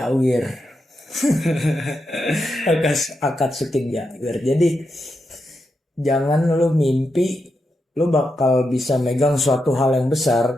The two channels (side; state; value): both; normal; correlation 0.85